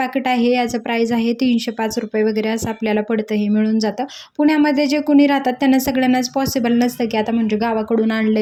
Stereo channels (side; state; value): both; identical; correlation 1.00